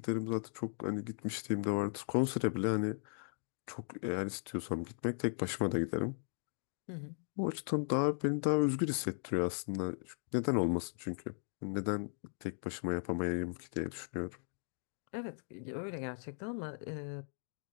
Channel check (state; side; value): silent; right; digital silence